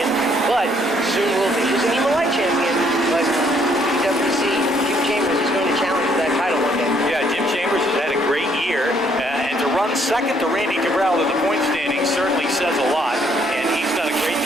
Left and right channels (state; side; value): normal; both; correlation 0.67